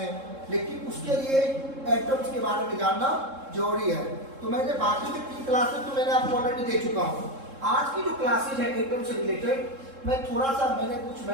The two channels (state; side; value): late; left; 3.7 ms